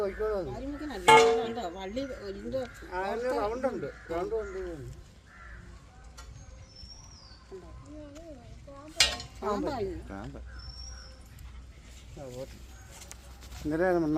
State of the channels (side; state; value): both; identical; correlation 1.00